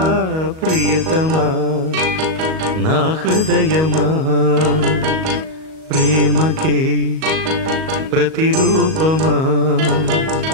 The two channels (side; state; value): left; late; 38 ms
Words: ప్రియతమా నా హృదయమా ప్రేమకే ప్రతిరూపమా